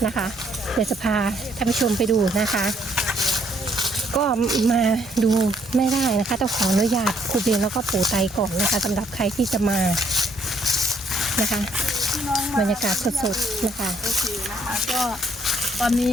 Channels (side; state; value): both; normal; correlation 0.68